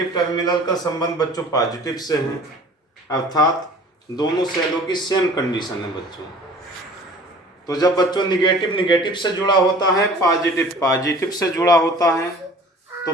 टर्मिनल का संबंध बच्चों पॉजिटिव से है, अर्थात दोनों सेलों की सेम कंडीशन है बच्चों। तो जब बच्चों निगेटिव से जुड़ा होता है, पॉजिटिव से जुड़ा होता है, तो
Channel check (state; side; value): normal; both; correlation 0.47